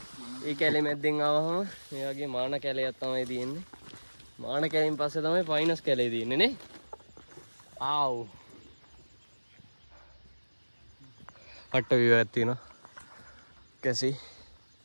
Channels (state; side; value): inverted; both; correlation -1.00